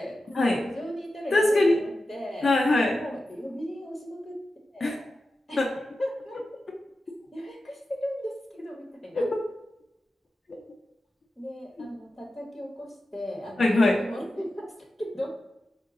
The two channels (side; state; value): both; normal; correlation 0.92